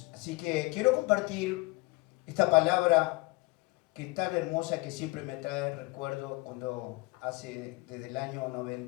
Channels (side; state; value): right; quieter; 23.1 dB